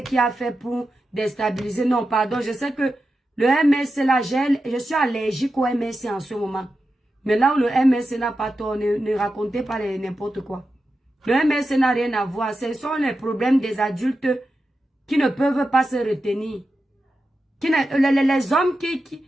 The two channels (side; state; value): both; normal; correlation 0.90